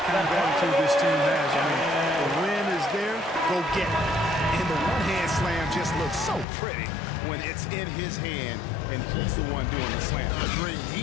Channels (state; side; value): drops out; right; at 6.5 s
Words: kind of attitude this team has. I mean, the win is there, go get it. And the one-hand slam just looks so pretty when it's in his hand and he's the one doing the slam. Agreed.